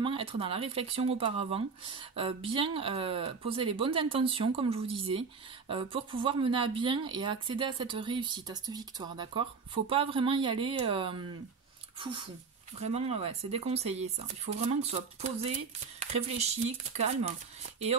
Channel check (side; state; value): left; quieter; 5.2 dB